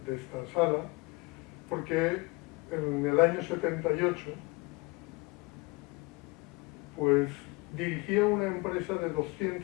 sala, porque en el año 78 pues dirigía una empresa de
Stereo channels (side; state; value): right; quieter; 26.0 dB